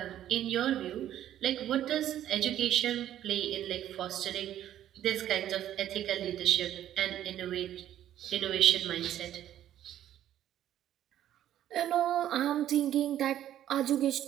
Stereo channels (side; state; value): left; quieter; 11.7 dB